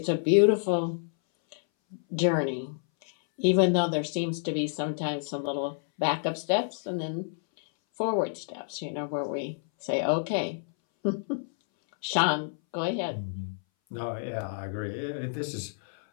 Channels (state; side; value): silent; right; 59 dB below the other